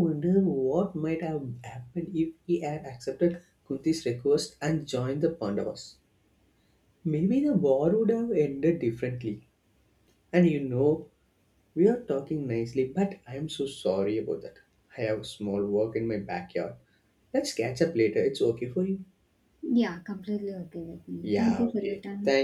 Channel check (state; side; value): identical; both; correlation 1.00